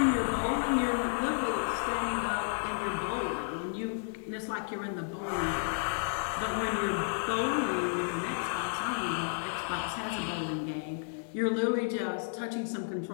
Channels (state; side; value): silent; right; 56 dB below the other